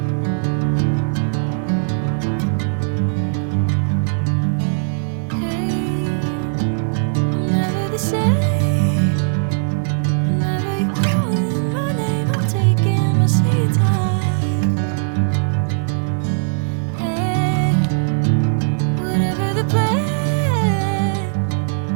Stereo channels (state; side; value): silent; left; digital silence